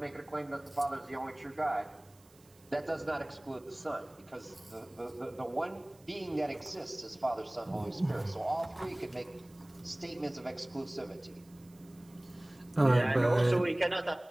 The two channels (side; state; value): right; noise; hiss, 28 dB below the sound